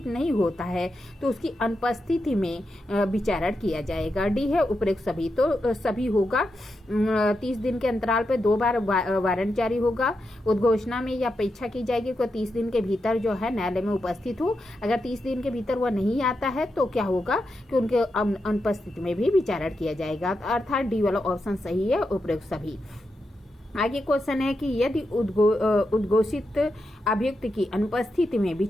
नहीं होता है तो उसकी अनुपस्थिति में विचारण किया जाएगा। डी है उपरोक्त सभी, तो सभी होगा। 30 दिन के अंतराल पर 2 बार वारंट जारी होगा। उद्घोषणा में यह अपेक्षा की जाएगी कि 30 दिन के भीतर जो है न्यायालय में उपस्थित हो। अगर 30 दिन के भीतर वह नहीं आता है तो क्या होगा कि उनके अनुपस्थिति में भी विचारण किया जाएगा। अर्थात डी वाला ऑप्शन सही है, उपरोक्त सभी। आगे क्वेश्चन है कि यदि उद्घोषित अभियुक्त की अनुपस्थिति में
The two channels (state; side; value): normal; both; correlation 0.86